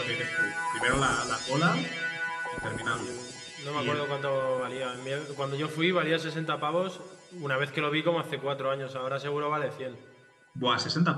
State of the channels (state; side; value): identical; both; correlation 1.00